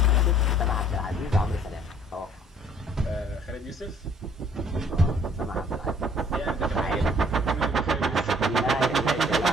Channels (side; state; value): both; normal; correlation 0.58